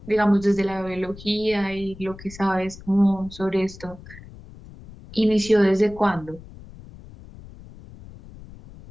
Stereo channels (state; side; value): noise; left; rumble, 18 dB below the sound